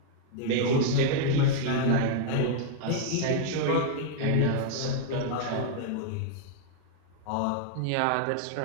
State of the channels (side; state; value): both; different; correlation -0.01